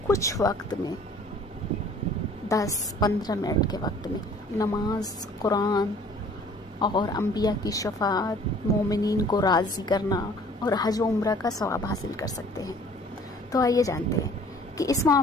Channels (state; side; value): normal; both; correlation 0.52